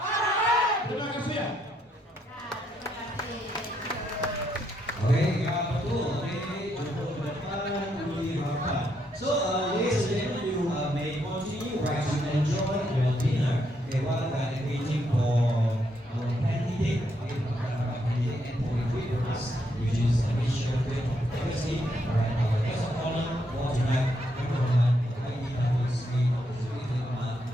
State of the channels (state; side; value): normal; both; correlation 0.76